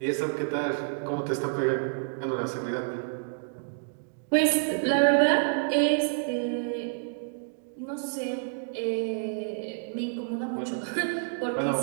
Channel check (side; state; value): left; silent; digital silence